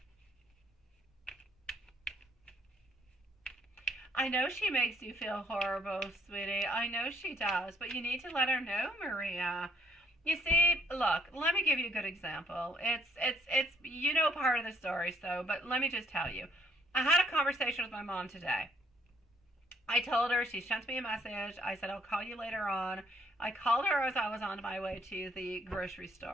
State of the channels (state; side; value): normal; both; correlation 0.66